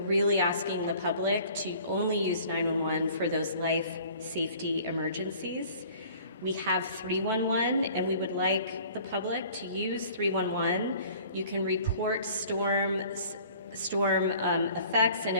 asking the public to only use 911 for those life safety emergencies. We have 311, and we would like the public to use 311. You can report storm effects and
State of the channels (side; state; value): both; inverted; correlation -0.50